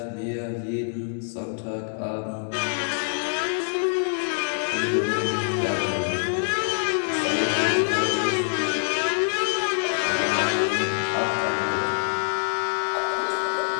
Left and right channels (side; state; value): right; silent; digital silence